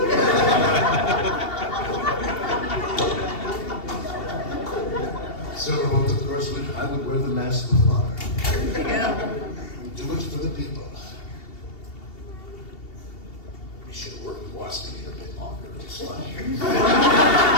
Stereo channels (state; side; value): late; right; 2.7 ms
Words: Silverbolt, of course, I would wear the mask with honor. Do it for the people. We should have worked with Wasp a bit longer. It's funny.